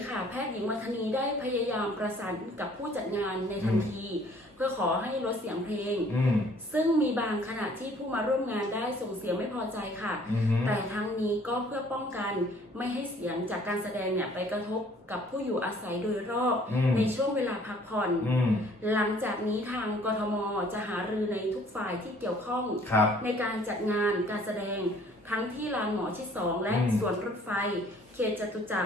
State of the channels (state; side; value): normal; both; correlation 0.57